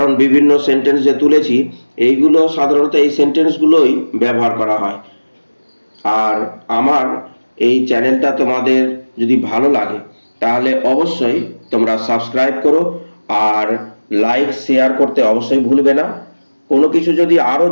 বিভিন্ন সেন্টেন্স যে তুলেছি এইগুলো সাধারণত এই সেন্টেন্সগুলোই ব্যবহার করা হয়। আর আমার এই চ্যানেলটা তোমাদের যদি ভালো লাগে তাহলে অবশ্যই তোমরা সাবস্ক্রাইব করো আর লাইক শেয়ার করতে অবশ্যই ভুলবে না। কোনো কিছু যদি আরও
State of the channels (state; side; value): inverted; both; correlation -1.00